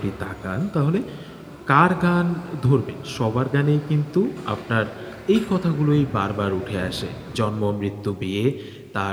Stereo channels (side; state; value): both; identical; correlation 1.00